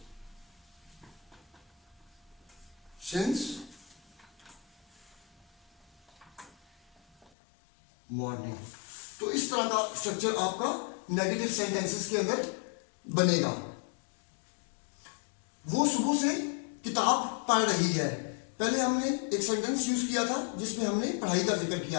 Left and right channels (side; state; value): right; drops out; at 7.3 s